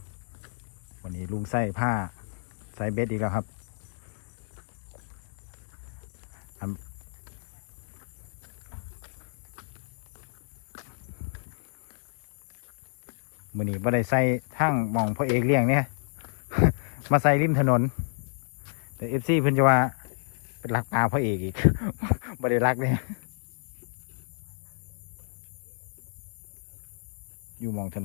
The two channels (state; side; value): silent; right; 58 dB below the other